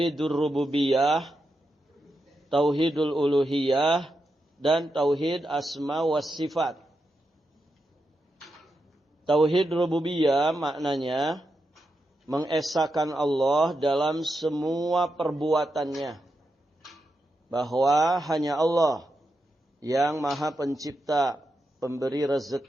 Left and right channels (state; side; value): normal; both; correlation 0.86